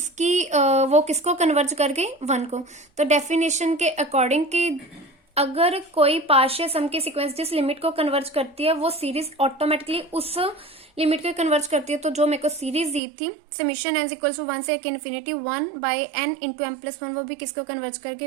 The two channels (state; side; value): drops out; left; at 13.0 s